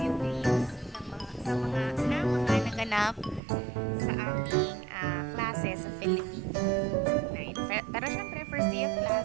clips sa mga naganap sa aming klase sa Philippines. Pero syempre, first day of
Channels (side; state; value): left; drops out; at 3.4 s